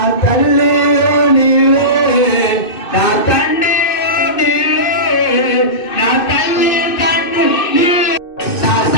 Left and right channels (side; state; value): right; late; 2.6 ms